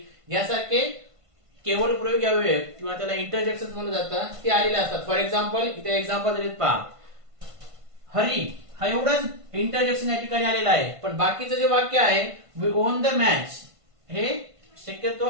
यासारखे केवळ प्रयोगी अव्यय किंवा त्याला इंटरजेक्शन्स म्हणलं जातं, ते आलेले असतात. फॉर एक्झाम्पल इथे एक्झाम्पल दिलेत पहा. हरी हा एवढंच इंटरजेक्शन या ठिकाणी आलेला आहे, पण बाकीचं जे वाक्य आहे वी ओन द मॅच हे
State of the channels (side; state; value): left; late; 1.5 ms